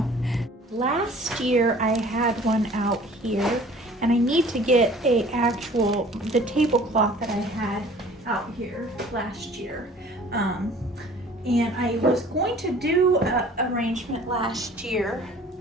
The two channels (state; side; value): normal; both; correlation 0.50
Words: Last year I had one out here and I need to get the tablecloth that I had out here last year. And I was going to do an arrangement last year,